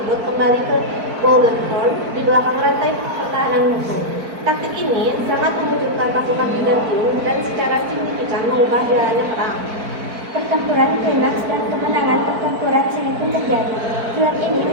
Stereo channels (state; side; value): late; left; 4.5 ms